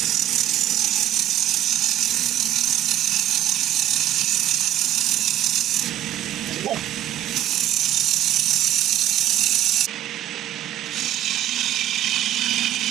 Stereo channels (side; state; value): left; quieter; 12.6 dB